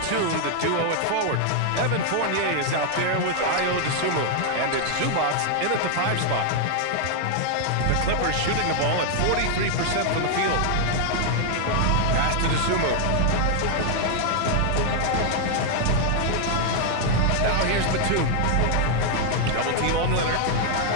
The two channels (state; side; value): different; both; correlation 0.00